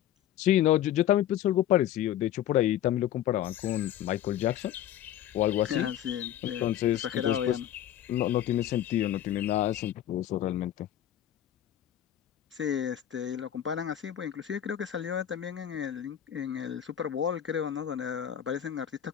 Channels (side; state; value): right; quieter; 11.4 dB